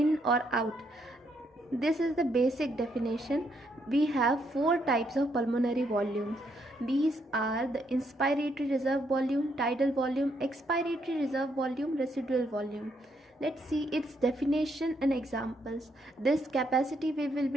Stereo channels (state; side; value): normal; both; correlation 0.74